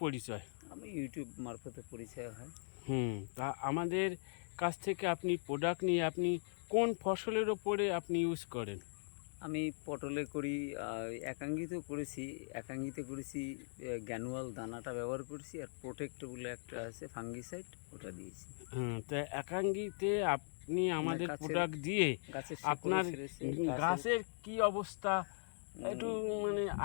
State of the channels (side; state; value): right; silent; digital silence